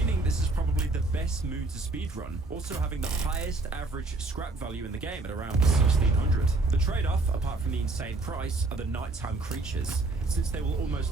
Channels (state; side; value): quieter; left; 3.2 dB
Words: this is probably the best moon to speedrun, also having the highest average scrap value in the game at around 1600. The trade-off, apart from the insane price, are the nighttime creatures, since they will